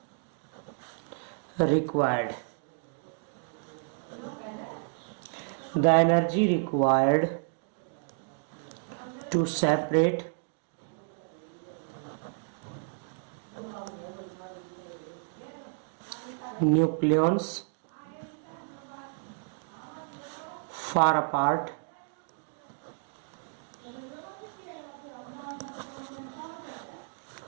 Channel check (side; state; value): left; silent; digital silence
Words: required to separate nucleons far apart